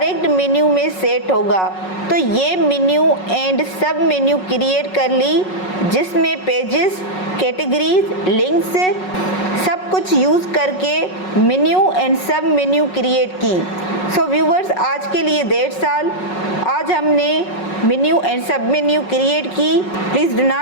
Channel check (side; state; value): right; late; 5.4 ms